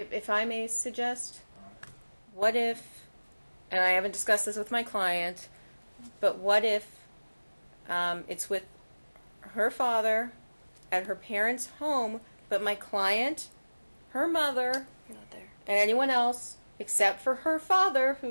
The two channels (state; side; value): inverted; both; correlation -1.00